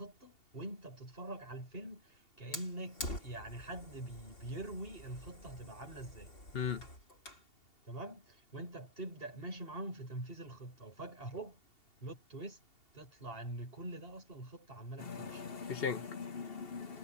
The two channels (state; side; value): late; right; 2.8 ms